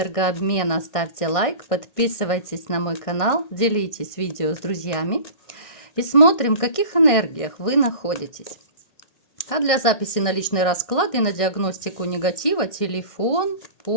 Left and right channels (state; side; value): late; right; 1.6 ms